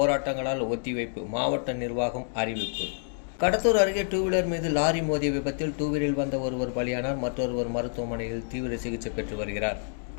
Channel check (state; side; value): silent; right; digital silence